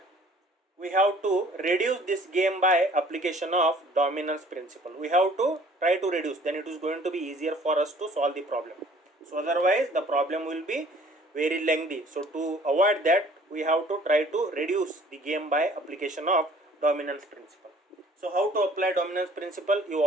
We have to reduce this game by application of dominance principle. We have to try to reduce, then it is going to be easier for us to solve the problem. So otherwise the problem will be very lengthy. So to avoid that, we have to try to reduce the game by application of dominance principle. So how to apply dominance principle? You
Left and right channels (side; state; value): both; normal; correlation 0.54